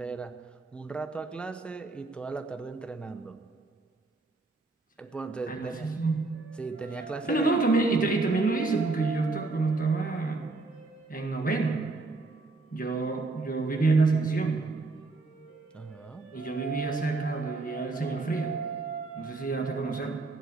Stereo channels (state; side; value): quieter; left; 3.5 dB